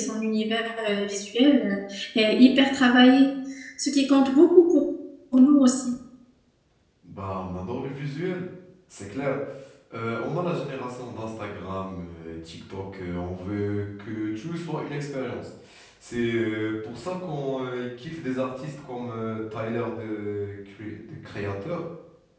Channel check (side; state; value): both; identical; correlation 1.00